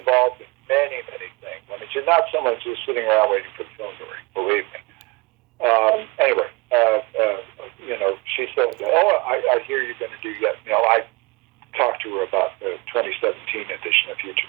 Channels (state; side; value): quieter; left; 26.1 dB